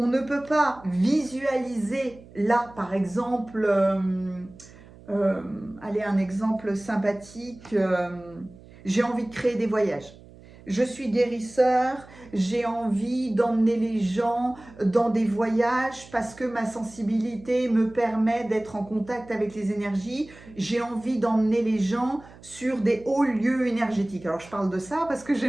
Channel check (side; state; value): right; noise; hum, 21 dB below the sound